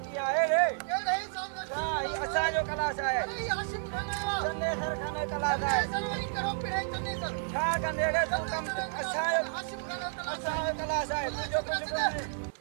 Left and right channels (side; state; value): left; silent; digital silence